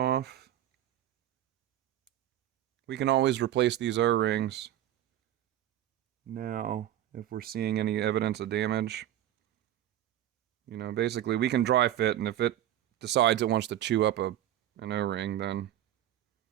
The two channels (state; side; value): quieter; left; 12.2 dB